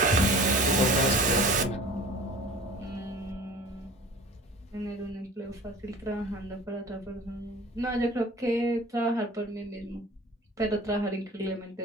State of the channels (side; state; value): both; normal; correlation 0.43